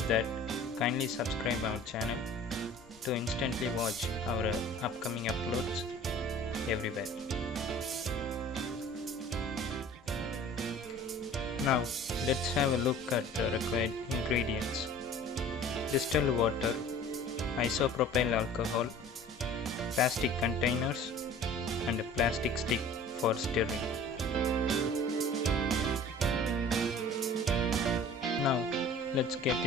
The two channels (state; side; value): normal; both; correlation 0.46